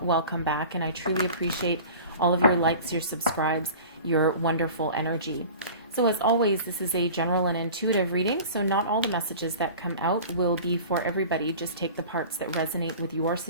welcome back, and I truly appreciate all of your likes, your subscribes, your wonderful energy. So as always, this is a general and intuitive reading, so not all the messages that come out will be for everybody. Just take the parts that resonate with your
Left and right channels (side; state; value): both; inverted; correlation -0.40